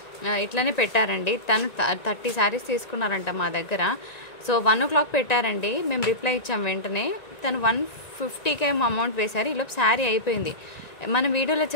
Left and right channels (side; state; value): right; late; 1.9 ms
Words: ఇట్లనే పెట్టారండి, తను 30 శారీస్ తీసుకున్నారంట మా దగ్గర. సో 1 o'clock పెట్టారండి, మేము రిప్లై ఇచ్చాం వెంటనే. తను 150K అమౌంట్ వేశారు. ఈలోపు శారీ అయిపోయింది. మన వీడియోలో